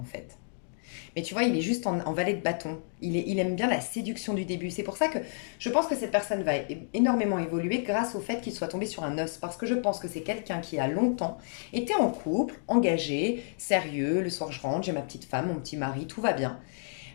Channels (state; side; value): silent; right; digital silence